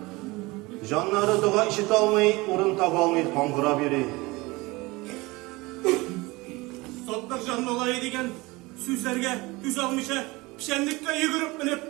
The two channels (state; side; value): quieter; left; 22.6 dB